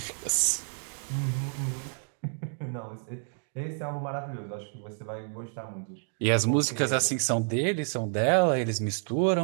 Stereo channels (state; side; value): silent; left; 55 dB below the other